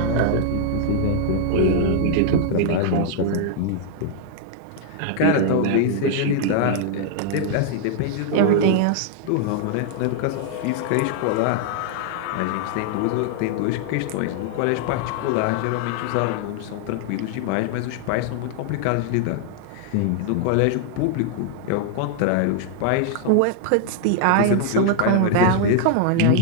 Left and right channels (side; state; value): both; different; correlation 0.00